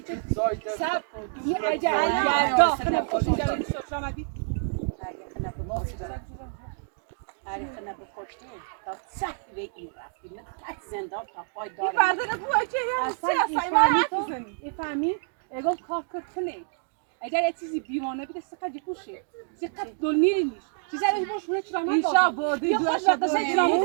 سب دونی اجا خنا خوشی دارن شرامتی خنا بکشتی تا سخت به این رفتی من تک زندان تا پای دارم فردا بو اجا فهمی اگه کار کنه اگر یه چیزی بیوانه بیده سقط جپوشه سقط دونی نیست چیزی رو باشه چرامت اینجا بودی دو تا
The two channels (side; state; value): left; silent; digital silence